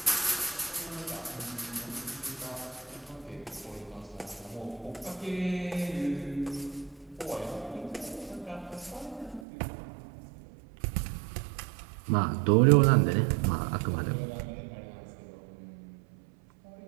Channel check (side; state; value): left; drops out; at 9.5 s